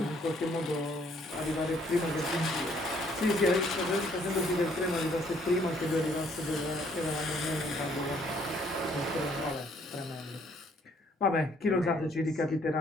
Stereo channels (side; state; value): both; normal; correlation 0.64